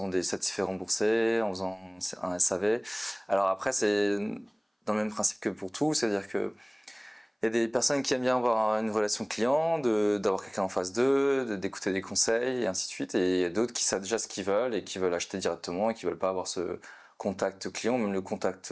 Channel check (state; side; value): identical; both; correlation 1.00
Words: des certifiés remboursés, en faisant un SAV. Alors après, c'est dans le même principe que pour tout, c'est-à-dire que il y a des personnes qui aiment bien avoir une relation client, d'avoir quelqu'un en face d'eux, d'écouter des conseils et ainsi de suite. Et il y a d'autres qui savent déjà ce qu'ils veulent et qui veulent acheter directement et qui veulent pas avoir ce contact client, même le contact